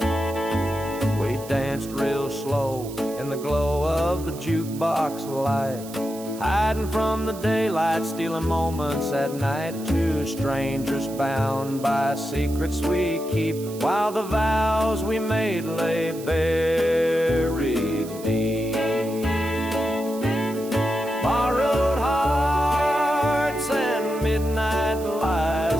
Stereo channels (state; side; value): noise; right; hiss, 17 dB below the sound